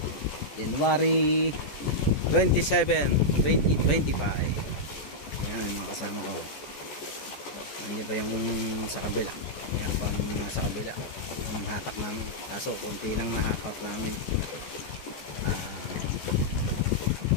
January 27, 2025. Ayan yung mga kasama ko. Nandiyan pa yung sa kabila. Ayan pang nasa kabila yung hatak namin, kaso konti lang nahakot namin.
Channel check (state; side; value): late; right; 14 ms